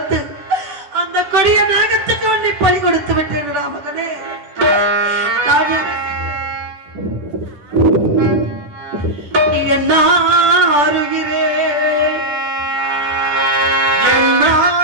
அந்த கொடிய நாகத்துக்கு உன்னை பலி கொடுத்து விட்டேன் மகனே. என்ன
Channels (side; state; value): left; late; 10 ms